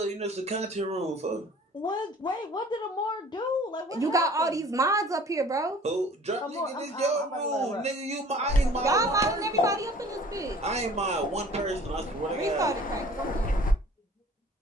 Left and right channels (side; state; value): both; normal; correlation 0.50